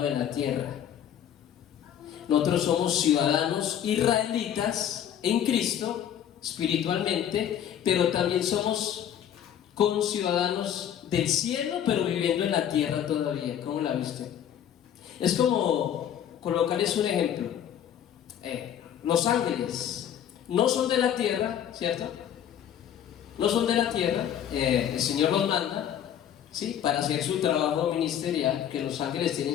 de la tierra. Nosotros somos ciudadanos israelitas en Cristo, espiritualmente, pero también somos conciudadanos del cielo, pero viviendo en la tierra todavía. ¿Cómo la viste? Es como colocarles un ejemplo. Los ángeles no son de la tierra, ¿cierto? No son de la tierra. El Señor los manda, ¿sí?, para hacer su trabajo ministerial, que los ángeles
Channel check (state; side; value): quieter; right; 9.8 dB